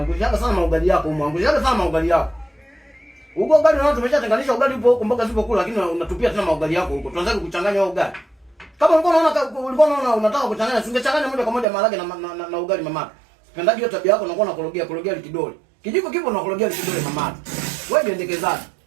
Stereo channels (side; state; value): left; drops out; at 11.7 s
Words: sana maugali yako, angushaga sana maugali yako. Huko ugali unao tumeshatenganisha ugali upo huko mboga zipo kula, lakini unatupia tena maugali yako huko. Tunaanza kuchanganya ugali. Kama ulikuwa unaona unataka kuchanganya, usingechanganya moja kwa moja maharage na ugali mama. Sipendaji hiyo tabia yako, unakuwa unakorogea kidole. Kijiko kipo unakorogea kidole mama. Wewe jiendekezaje?